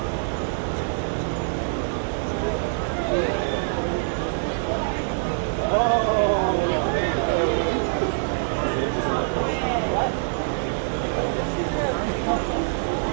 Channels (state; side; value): silent; left; digital silence